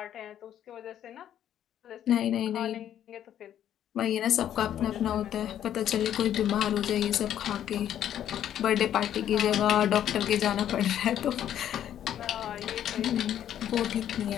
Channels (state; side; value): quieter; right; 10.6 dB